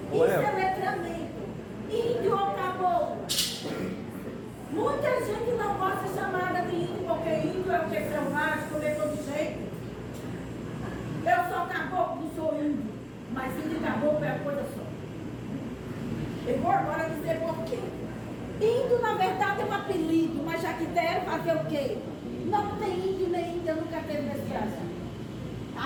Isso é letramento. Índio ou caboclo. Muita gente não gosta de ser chamada de índio, porque índio é o que é selvagem, comer todo jeito. Eu sou caboclo, não sou índio. Mas índio e caboclo é a coisa só. Eu vou agora dizer por quê. Índio, na verdade, é um apelido, mas já que deram fazer o quê? Não tem índio nem índia, nunca teve nesse Brasil.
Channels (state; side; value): identical; both; correlation 1.00